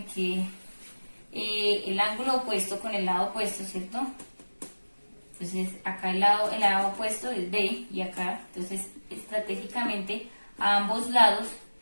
quede el ángulo opuesto con el lado opuesto, ¿cierto? Entonces, acá el lado opuesto es B y acá, entonces, estratégicamente, a ambos lados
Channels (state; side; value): inverted; both; correlation -1.00